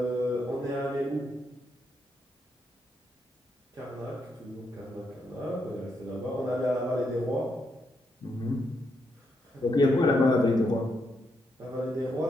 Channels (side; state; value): both; normal; correlation 0.80